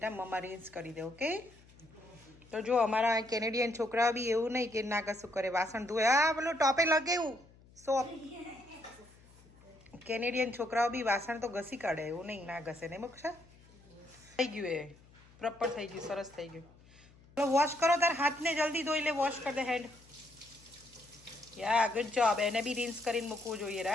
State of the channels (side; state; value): left; noise; hum, 26 dB below the sound